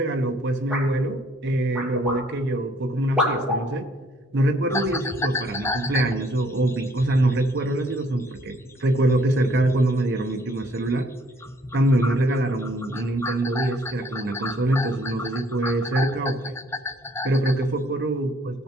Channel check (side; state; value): both; normal; correlation 0.63